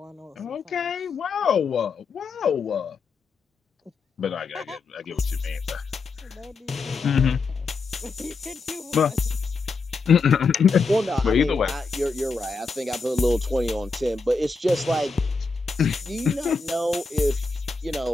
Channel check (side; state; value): right; quieter; 4.2 dB